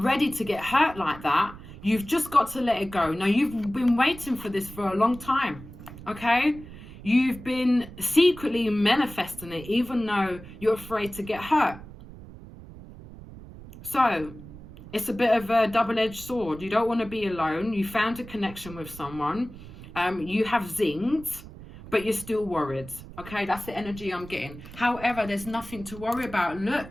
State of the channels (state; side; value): noise; right; rumble, 16 dB below the sound